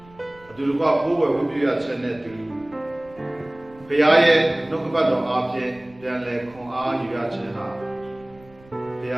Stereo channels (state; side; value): noise; right; rumble, 25 dB below the sound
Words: အတူတကွကိုးကွယ်ဝတ်ပြုရခြင်းနဲ့တူဘုရားရဲ့နှုတ်ကပတ်တော်အားဖြင့်ပြန်လည်ခွန်အားယူရခြင်းဟာဘုရ